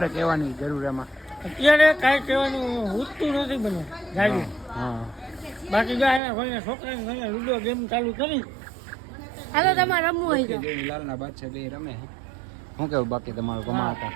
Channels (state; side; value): drops out; left; at 6.2 s